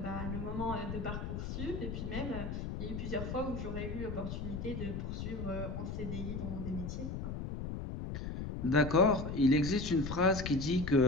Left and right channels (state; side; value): noise; left; rumble, 5 dB below the sound